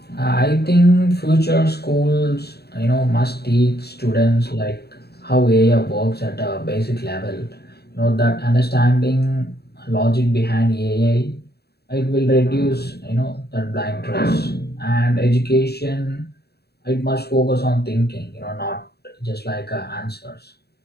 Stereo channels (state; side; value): late; right; 0.47 ms